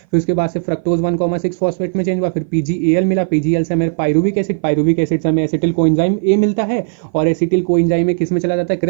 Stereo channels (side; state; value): left; silent; 58 dB below the other